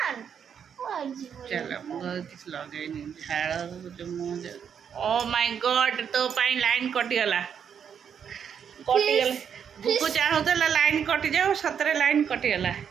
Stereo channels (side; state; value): left; quieter; 7.8 dB